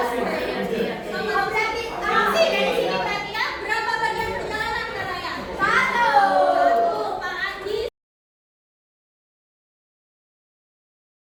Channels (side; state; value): both; identical; correlation 1.00